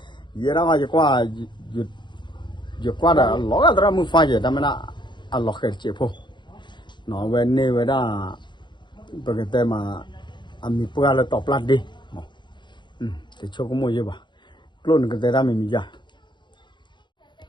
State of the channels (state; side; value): late; right; 0.22 ms